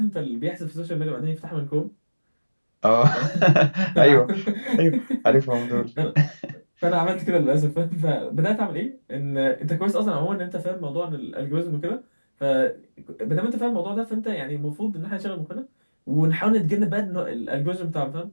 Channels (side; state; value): both; inverted; correlation -1.00